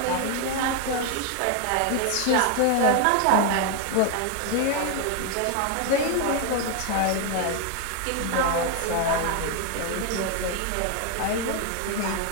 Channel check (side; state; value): both; different; correlation 0.01